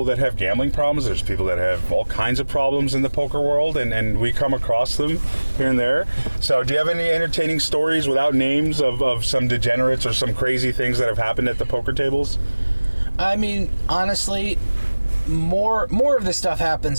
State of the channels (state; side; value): inverted; both; correlation -1.00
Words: that have gambling problems. There's people that have all kinds of problems in the poker world, and we come across them here and there. So do you have any entertaining stories without names of some degenerates or some crazy things that have happened at the poker tables? I mean, honestly, more of this stuff